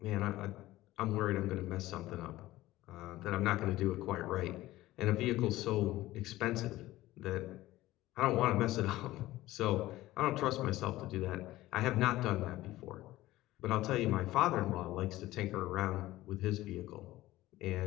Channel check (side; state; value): right; quieter; 16.7 dB